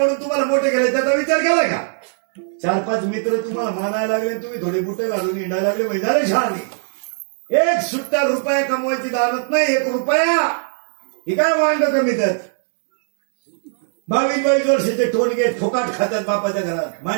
तुम्हाला मोठे केले, त्याचा विचार केलाय का? 4-5 मित्र तुम्हाला मानायला लागले, तुम्ही थोडे बुटे घालून हिंडायला लागले म्हणजे झाले शहाणे. 1 सुट्टा रुपया कमवायची दानत नाही. 1 रुपया ही काय वांड कमी त्यात. 22-22 वर्षाचे टोनगे फुकाट खात्यात बापाच्या घरात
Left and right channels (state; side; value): silent; left; digital silence